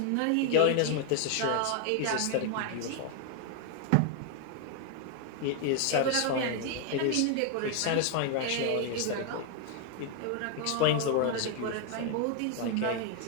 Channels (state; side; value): different; both; correlation 0.00